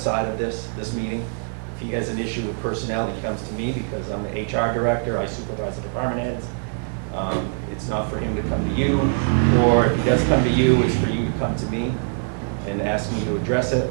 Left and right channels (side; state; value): left; silent; 63 dB below the other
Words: of this meeting. If he has an issue with personnel, he comes to me because I'm the HR director, I supervise the department heads. It's not for him to come to you, or if he does come to you, it's for you to come to me and ask me to address